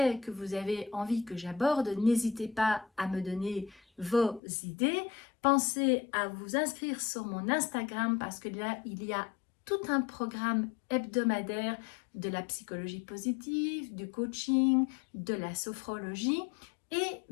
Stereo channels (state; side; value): drops out; right; at 4.4 s